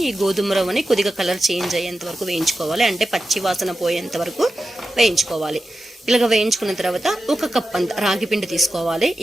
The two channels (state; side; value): normal; both; correlation 0.91